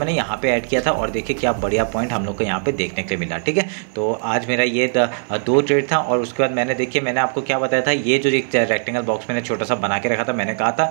यहाँ पे ऐड किया था। और देखिए क्या बढ़िया पॉइंट हम लोग को यहाँ पे देखने के लिए मिला, ठीक है। तो आज मेरा ये 2 ट्रेड था। और उसके बाद मैंने देखिए मैंने आपको क्या बताया था, ये जो एक रेक्टेंगल बॉक्स मैंने छोटा सा बना के रखा था, मैंने कहा था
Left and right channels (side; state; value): left; silent; 66 dB below the other